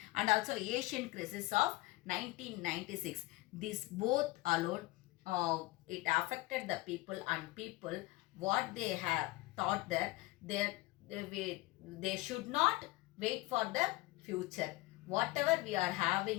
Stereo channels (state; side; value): quieter; right; 20.1 dB